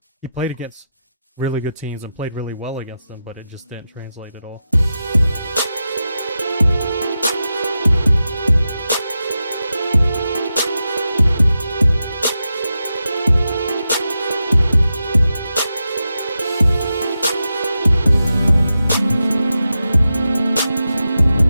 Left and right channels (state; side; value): inverted; both; correlation -0.90